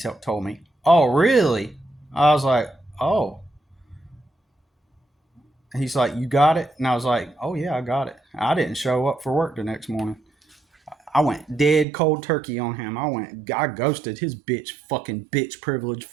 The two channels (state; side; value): drops out; left; at 11.9 s